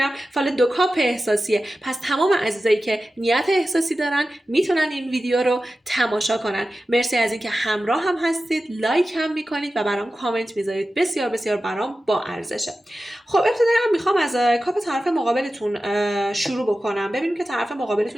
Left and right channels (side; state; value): both; normal; correlation 0.94